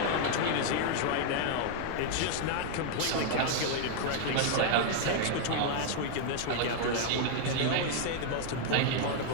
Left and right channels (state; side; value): different; both; correlation 0.00